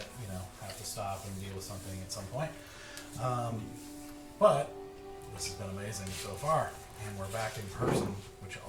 have to stop and deal with something at some point. But this has been amazing so far, and we're back in person, which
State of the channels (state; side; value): identical; both; correlation 1.00